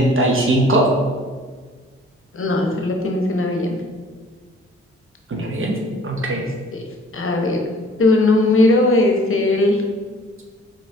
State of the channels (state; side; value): normal; both; correlation 0.53